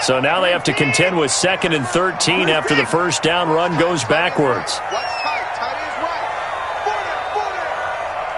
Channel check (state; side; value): identical; both; correlation 1.00